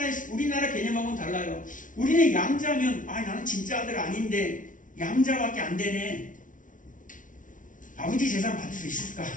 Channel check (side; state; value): right; late; 0.38 ms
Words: 우리나라 개념하고는 달라요. 우리는 양자면, 나는 진짜 아들 아닌데 양자밖에 안 되네. 아버지 재산 받을 수 있을까?